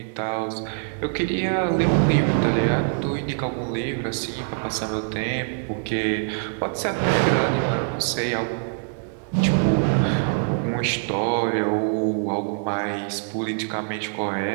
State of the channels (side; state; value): left; silent; 63 dB below the other